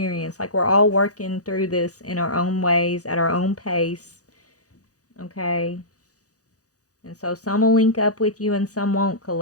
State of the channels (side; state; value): right; late; 0.67 ms